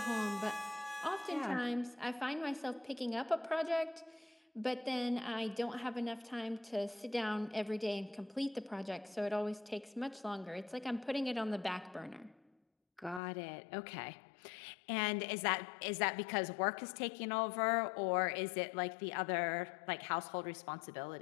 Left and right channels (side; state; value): right; drops out; at 13.2 s